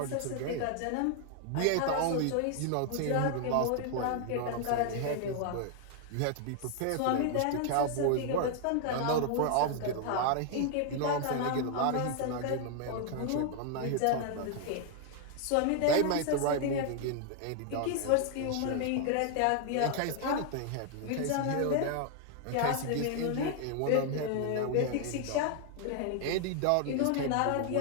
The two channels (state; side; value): different; both; correlation 0.00